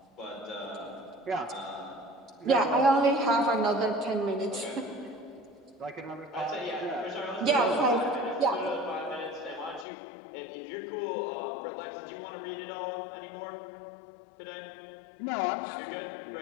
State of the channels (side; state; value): right; drops out; at 9.9 s